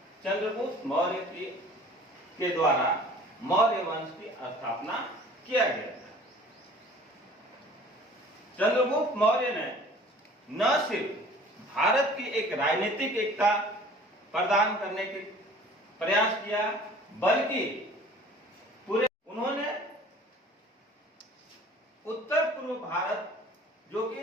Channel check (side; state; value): both; normal; correlation 0.48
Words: चंद्रगुप्त मौर्य के द्वारा मौर्य वंश की स्थापना किया गया था। चंद्रगुप्त मौर्य ने न सिर्फ भारत की एक राजनीतिक एकता प्रदान करने के प्रयास किया, बल्कि उन्होंने उत्तर पूर्व भारत जो